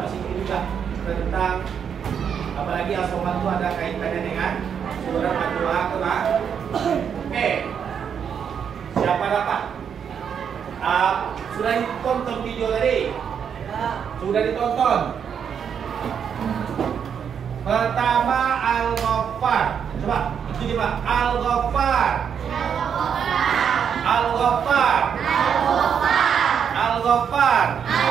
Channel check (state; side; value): quieter; left; 7.6 dB